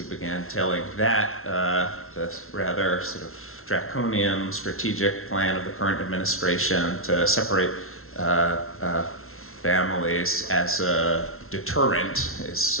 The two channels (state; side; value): late; right; 0.62 ms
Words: began telling that, the rather sort of draconian strategic plan of the current administration to separate families as a deterrent